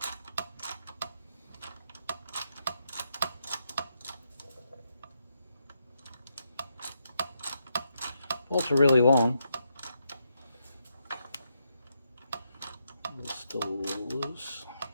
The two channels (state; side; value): inverted; both; correlation -0.81